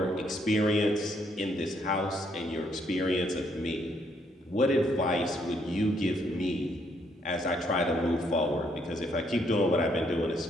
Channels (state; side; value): normal; both; correlation 0.71